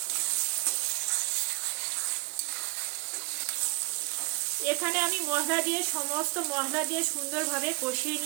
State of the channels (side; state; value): left; quieter; 29.6 dB